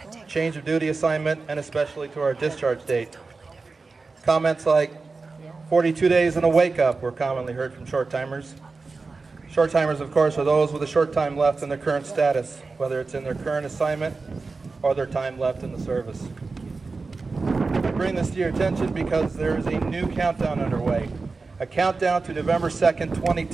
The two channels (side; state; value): left; quieter; 4.1 dB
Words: change of duty assignment, and especially to our discharge date. Comments like 42 days and a wake-up were commonly heard from short-timers. Short-timers, of course, are those with a short time left in their current status, whether it's in their current assignment or their time left in the service. I bring this to your attention because there is a new countdown underway, a countdown to November 2nd,